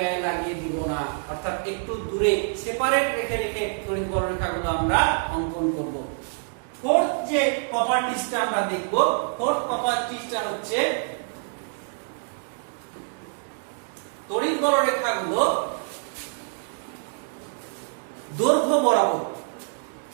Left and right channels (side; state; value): left; silent; 61 dB below the other